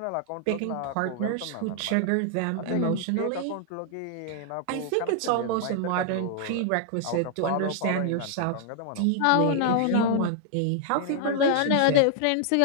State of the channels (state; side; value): different; both; correlation 0.00